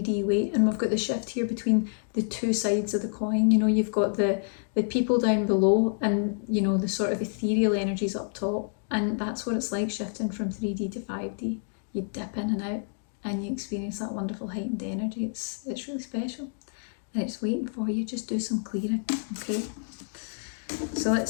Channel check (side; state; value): right; silent; digital silence